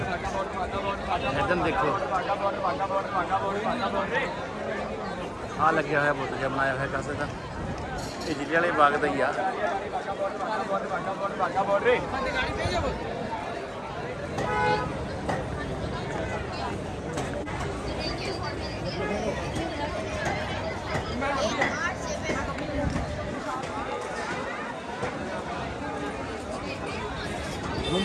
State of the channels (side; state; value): both; identical; correlation 1.00